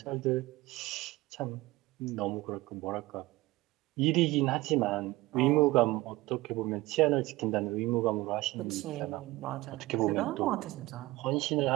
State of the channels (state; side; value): quieter; left; 19.6 dB